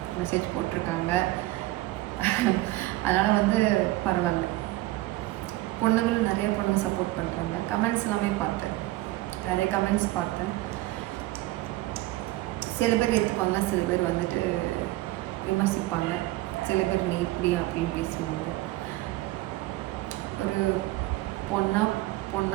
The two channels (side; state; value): left; quieter; 17.9 dB